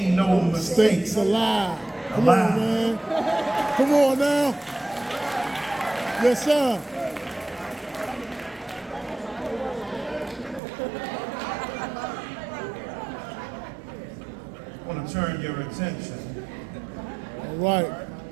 no mistakes allowed. Come on, man. Come on now. Yes, sir. I want to turn your attention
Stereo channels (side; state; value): left; drops out; at 10.6 s